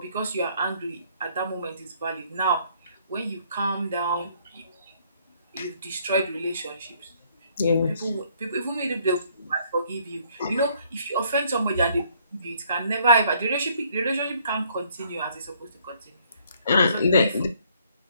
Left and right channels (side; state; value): both; inverted; correlation -0.64